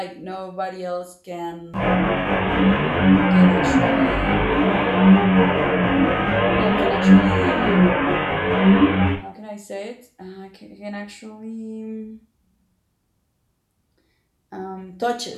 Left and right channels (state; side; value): identical; both; correlation 1.00